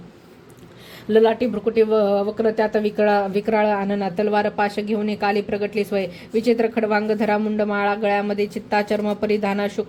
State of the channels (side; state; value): both; identical; correlation 1.00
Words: ललाटी भ्रुकुटी वक्र त्यात विक्राळ आनना. तलवार पाश घेऊन काली प्रगटली स्वय. विचित्र खडवांग धरा मुंड माळा. गळ्यामध्ये चित्ता चर्म परिधाना.